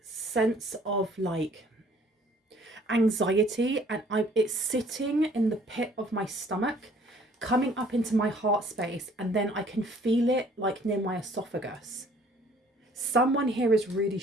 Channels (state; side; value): normal; both; correlation 0.57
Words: sense of like anxiety, and it's sitting in the pit of my stomach, coming up into my heart space, and then I can feel it like near my esophagus. Someone here is really